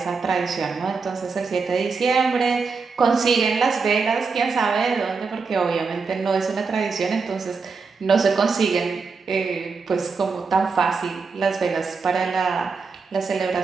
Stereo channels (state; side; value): quieter; left; 4.8 dB